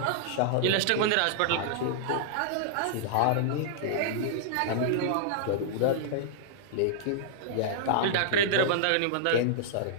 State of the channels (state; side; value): different; both; correlation -0.01